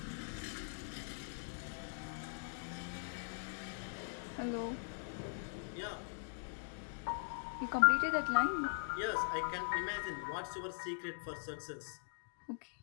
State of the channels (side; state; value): right; silent; digital silence